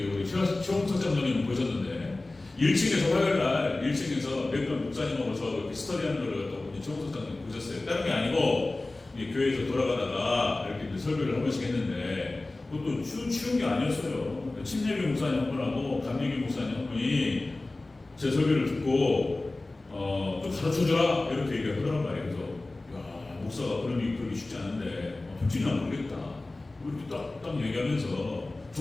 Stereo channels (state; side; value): quieter; right; 3.0 dB